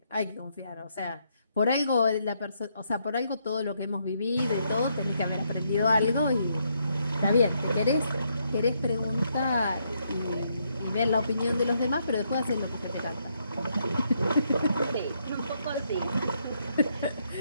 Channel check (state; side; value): inverted; both; correlation -0.76